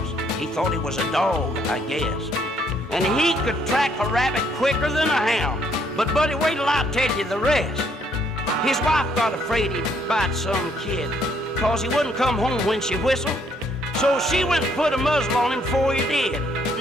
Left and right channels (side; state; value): both; normal; correlation 0.68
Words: He thought he was a dog, I guess. And he could track a rabbit quicker than a hound. But buddy, wait till I tell you the rest. His wife got afraid he'd bite some kid, 'cause he wouldn't come home when she whistled. So she went and put a muzzle on him before he did.